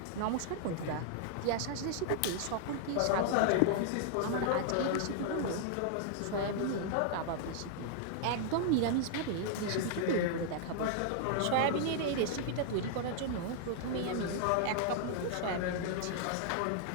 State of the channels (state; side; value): different; both; correlation -0.01